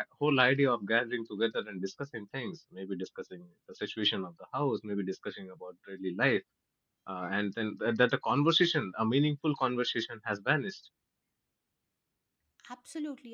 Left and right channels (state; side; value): identical; both; correlation 1.00